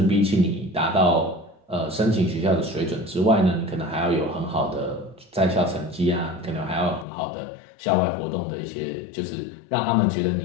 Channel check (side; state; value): right; drops out; at 7.1 s